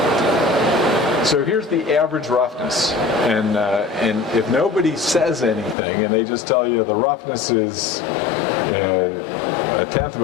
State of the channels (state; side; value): drops out; right; at 5.8 s